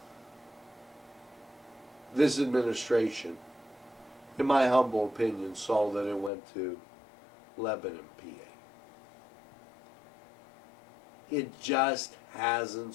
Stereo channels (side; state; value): right; drops out; at 6.3 s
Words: This administration, in my humble opinion, saw that it went to Lebanon, PA. It just hasn't